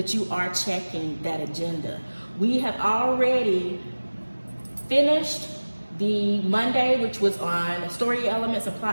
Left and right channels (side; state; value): both; inverted; correlation -1.00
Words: you are checking that agenda. We have already finished the Monday, which was on story elements and